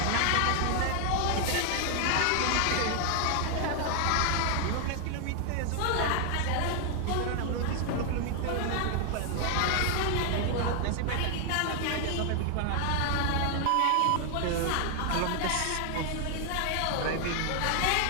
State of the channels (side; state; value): both; different; correlation 0.00